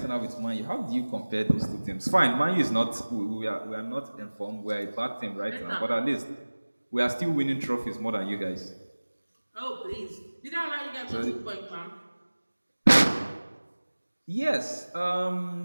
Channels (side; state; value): both; inverted; correlation -1.00